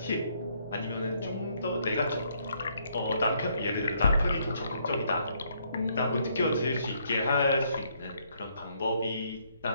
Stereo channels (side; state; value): both; inverted; correlation -0.70